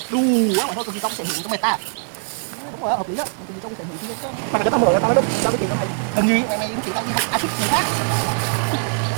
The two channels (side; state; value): left; silent; digital silence